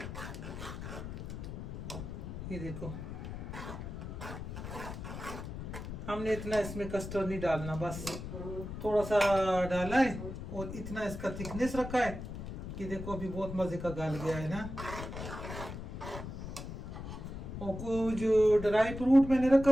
ये देखो हमने इतना इसमें कस्टर्ड नहीं डालना, बस थोड़ा सा डाला है और इतना इसका थिकनेस रखा है कि देखो अभी बहुत मज़े का गल गया है ना। और कुछ ड्राई फ्रूट मैंने रखा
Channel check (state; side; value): noise; left; rumble, 8 dB below the sound